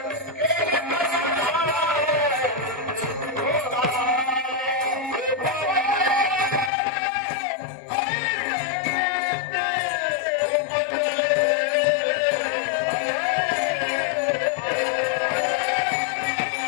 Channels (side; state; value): right; drops out; at 6.7 s